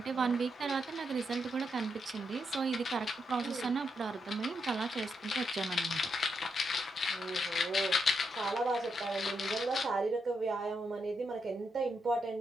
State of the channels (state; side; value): normal; both; correlation 0.82